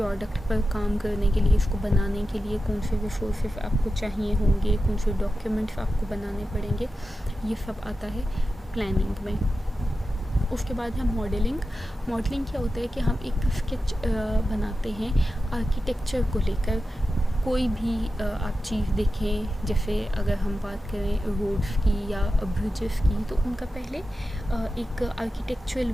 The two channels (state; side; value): normal; both; correlation 0.92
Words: पर काम करने के लिए, इसको बनाने के लिए कौन से रिसोर्सेज आपको चाहिए होंगे, कौन से डॉक्यूमेंट्स आपको बनाने पड़ेंगे, ये सब आता है प्लानिंग में। उसके बाद है मॉडलिंग। मॉडलिंग क्या होता है कि हम एक स्केच बनाते हैं आर्किटेक्चर को लेकर। कोई भी आप चीज़ देखें, जैसे अगर हम बात करें रोड्स की या ब्रिजेस की, तो उनका पहले एक आर्किटेक्चरल